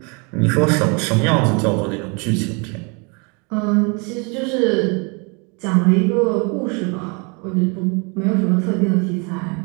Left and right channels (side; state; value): left; quieter; 32.4 dB